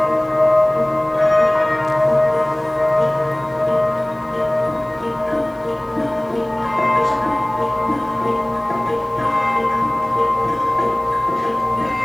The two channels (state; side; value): noise; right; hiss, 30 dB below the sound